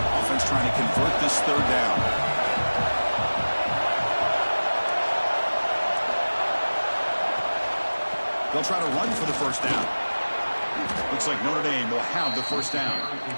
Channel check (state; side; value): inverted; both; correlation -1.00